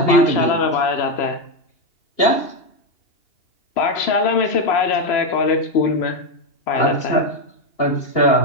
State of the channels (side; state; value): right; late; 2.8 ms